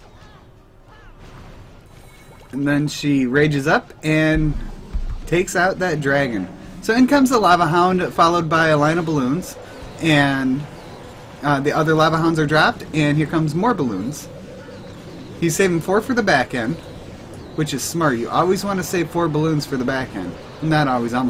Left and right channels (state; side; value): identical; both; correlation 1.00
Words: then she rages up and takes out that dragon. So in comes the Lava Hound, followed by a line of balloons. And the other Lava Hounds are dropped, and here comes more balloons. He's saving 4 for the back end, which is smart. You always want to save 4 balloons for the back end. Not always,